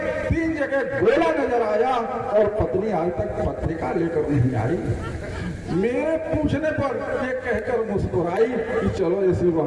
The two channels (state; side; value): identical; both; correlation 1.00